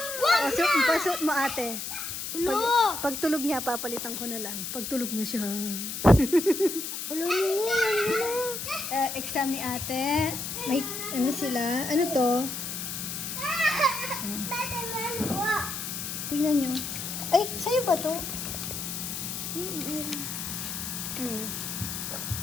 Pasot mo, ate. Pag tulog niya, papalitan ko na lang. Pag tulog na siya. Exam ni ate. May, sila? Ano to? Tingnan nyo. Ay, sa'yo ba to?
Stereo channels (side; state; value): left; noise; hiss, 5 dB below the sound